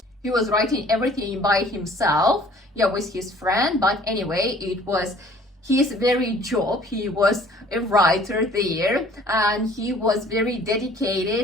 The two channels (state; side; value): normal; both; correlation 0.54